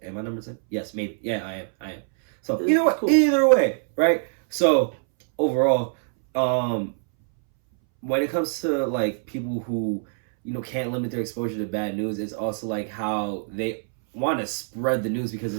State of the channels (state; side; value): silent; left; 62 dB below the other